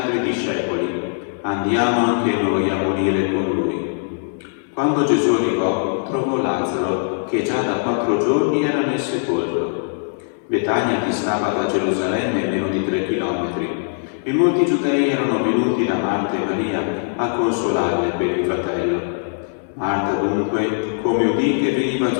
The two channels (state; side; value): silent; right; 64 dB below the other